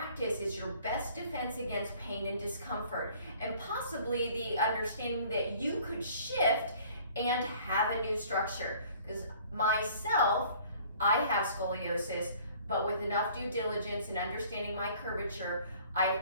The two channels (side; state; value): both; inverted; correlation -0.53